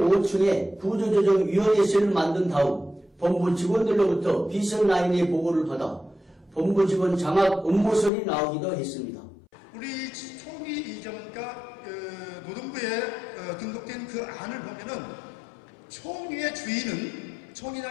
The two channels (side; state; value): right; drops out; at 8.1 s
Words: 5층에 구조조정위원회실을 만든 다음 본부 직원들로부터 비선라인의 보고를 받아 본부 직원 장악 업무설이 나오기도 했습니다. 우리 총리 이전과 노동부에 등록된 그 안을 보면은 총리의 주인은